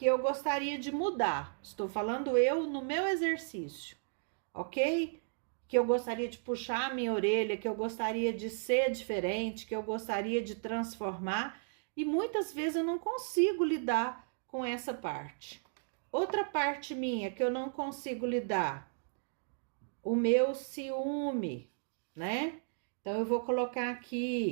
eu gostaria de mudar. Estou falando eu no meu exercício, ok? Que eu gostaria de puxar a minha orelha, que eu gostaria de ser diferente, que eu gostaria de transformar, e muitas vezes eu não consigo lidar com essa parte. Outra parte minha que eu não consigo lidar, o meu ciúme, né? Então, eu vou colocar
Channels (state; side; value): silent; left; digital silence